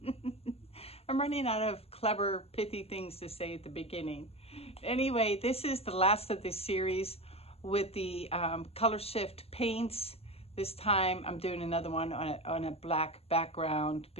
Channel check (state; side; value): late; right; 0.29 ms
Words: running out of clever, pithy things to say at the beginning. Anyway, this is the last of this series with the color shift paints. This time I'm doing another one on a black background